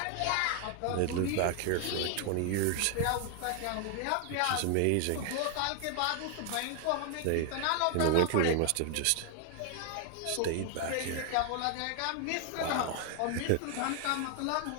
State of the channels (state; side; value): different; both; correlation 0.00